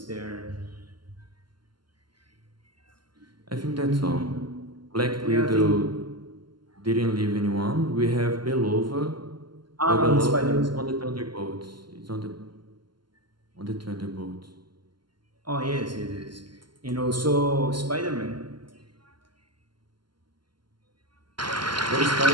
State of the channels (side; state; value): left; late; 0.72 ms